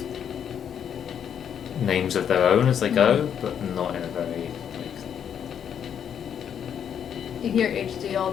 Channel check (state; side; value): quieter; right; 8.5 dB